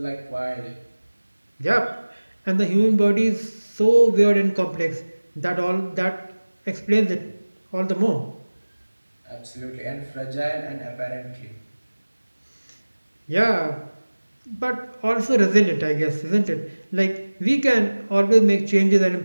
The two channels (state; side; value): inverted; both; correlation -1.00